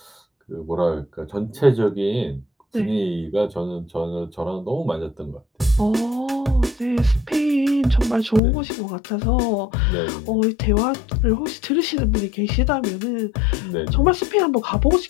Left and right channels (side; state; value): right; drops out; at 8.4 s